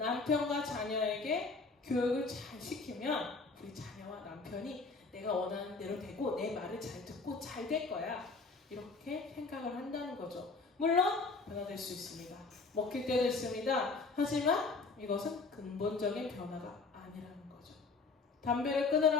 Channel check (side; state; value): right; quieter; 4.1 dB